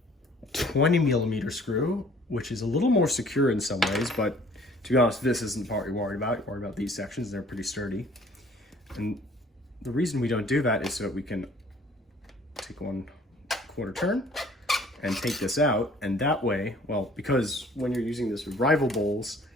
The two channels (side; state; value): both; normal; correlation 0.55